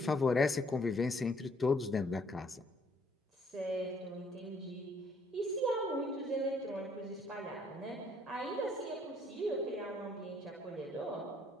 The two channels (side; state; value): both; normal; correlation 0.65